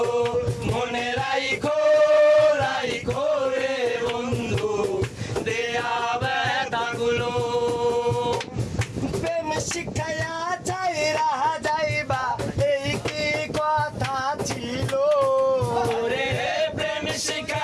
মনে রাইখো রাইখো রে বন্ধু দেয়া ব্যথাগুলো। প্রেম শিখাইয়া চাইরা যাইবা এই কি কথা ছিল। ওরে প্রেম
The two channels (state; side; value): identical; both; correlation 1.00